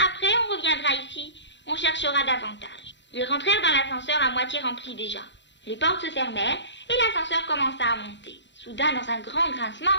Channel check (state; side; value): late; right; 0.52 ms